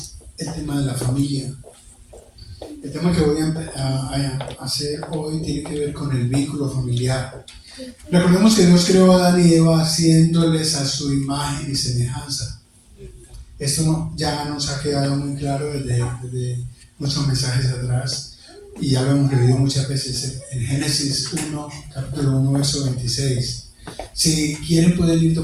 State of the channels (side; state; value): both; identical; correlation 1.00